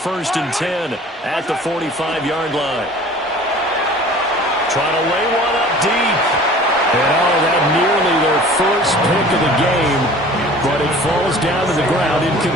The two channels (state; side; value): normal; both; correlation 0.45